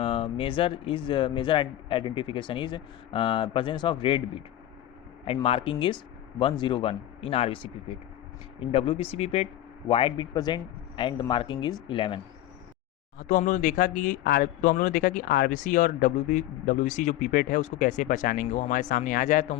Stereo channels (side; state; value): right; quieter; 13.6 dB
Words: measure identification is presence of red bit and marking is 101 in RBC pipette. In WBC pipette, white bit present and the marking is 11. तो हम लोगों ने देखा कि RBC और WBC जो pipette है उसको कैसे पहचानेंगे। वो हमारे सामने आ जाए तो